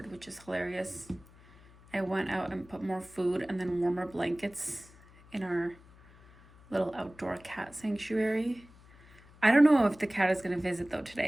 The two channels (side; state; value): left; noise; hum, 24 dB below the sound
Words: which is hilarious. I went out and put more food and then warmer blankets in our little outdoor cat sanctuary. I don't know if the cat is gonna visit though